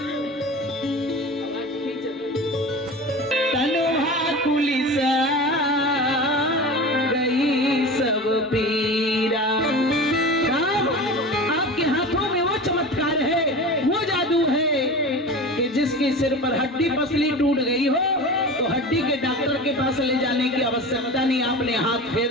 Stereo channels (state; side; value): normal; both; correlation 0.32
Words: तनुहा कुलिसा गई सब पीरा। राम, आपके हाथों में वो चमत्कार है, वो जादू है कि जिसके सिर पर हड्डी पसली टूट गई हो तो हड्डी के डॉक्टर के पास ले जाने की आवश्यकता नहीं। आपने हाथ फेर